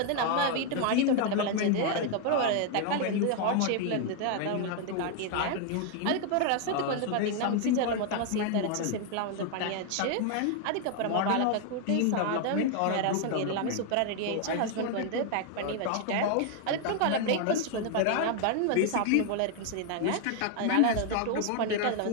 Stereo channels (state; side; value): different; both; correlation 0.00